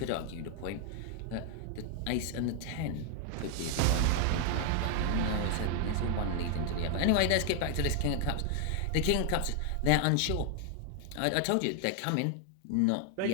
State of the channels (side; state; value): both; different; correlation 0.00